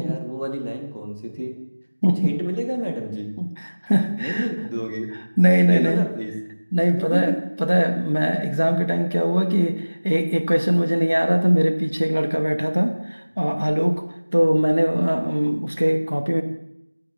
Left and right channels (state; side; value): inverted; both; correlation -1.00